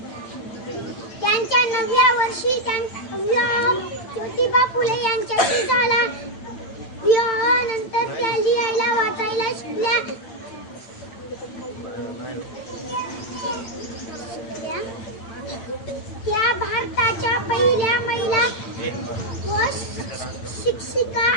त्यांच्या 9व्या वर्षी विवाह ज्योतिबा फुले यांच्याशी झाला. विवाहानंतर त्या लिहायला वाचायला शिकल्या. त्या भारताच्या पहिल्या महिला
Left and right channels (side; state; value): right; late; 8.9 ms